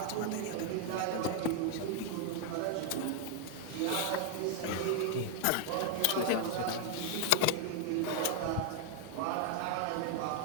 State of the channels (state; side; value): different; both; correlation 0.00